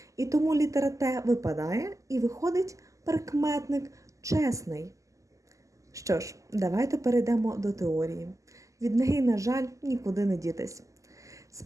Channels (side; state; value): left; late; 0.16 ms